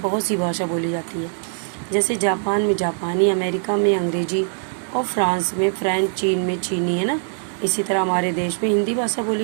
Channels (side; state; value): left; silent; digital silence